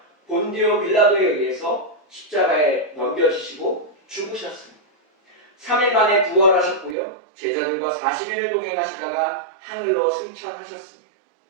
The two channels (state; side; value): drops out; left; at 7.0 s